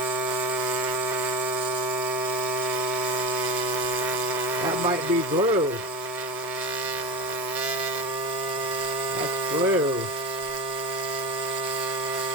That might be glue. That's glue.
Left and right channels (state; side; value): normal; both; correlation 0.24